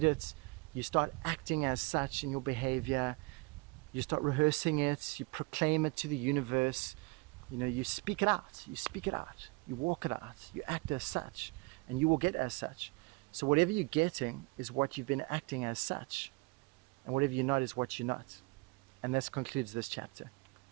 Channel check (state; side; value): quieter; left; 27.1 dB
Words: it, you start acting as such in your behavior, you start rehearsing it, you proclaim it to the universe, you speak it out, you walk it out, you act as such, and you will get as such. So whatever you're getting is what you've been acting as such, and whatever you're not is what you're not. And this concludes this chapter.